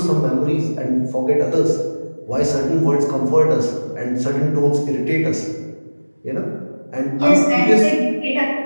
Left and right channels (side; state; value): both; inverted; correlation -1.00